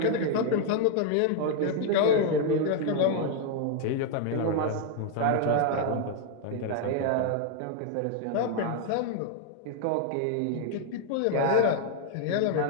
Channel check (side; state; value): both; different; correlation 0.00